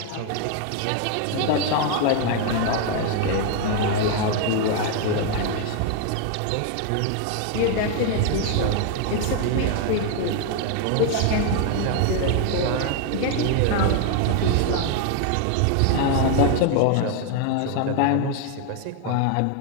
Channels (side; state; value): both; different; correlation 0.00